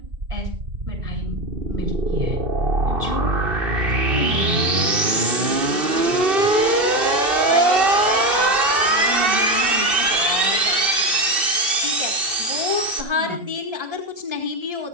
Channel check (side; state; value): left; late; 2.7 ms